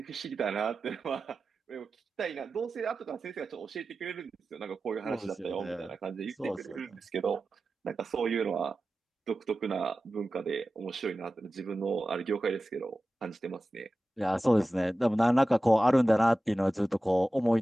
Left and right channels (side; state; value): both; normal; correlation 0.94